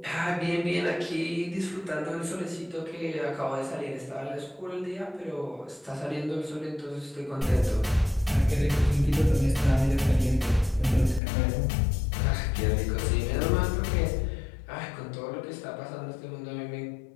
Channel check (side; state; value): right; drops out; at 11.2 s